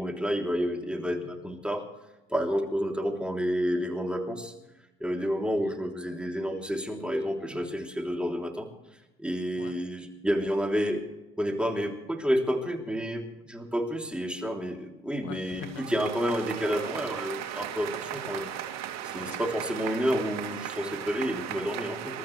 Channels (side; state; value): both; normal; correlation 0.83